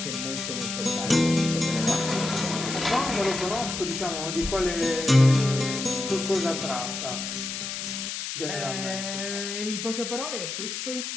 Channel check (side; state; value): left; noise; hiss, 5 dB below the sound